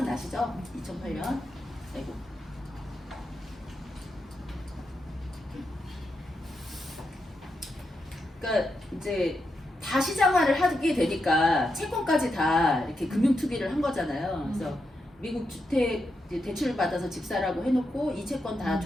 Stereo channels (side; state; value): both; normal; correlation 0.85